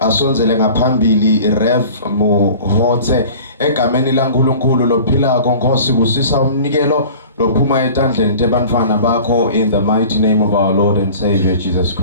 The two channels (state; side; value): inverted; both; correlation -0.42